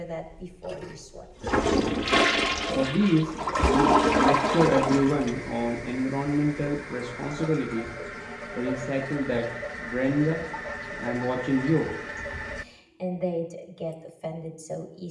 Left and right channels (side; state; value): both; identical; correlation 1.00